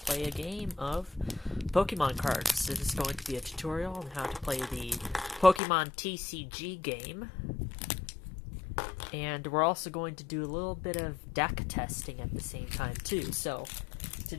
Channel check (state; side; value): drops out; right; at 5.6 s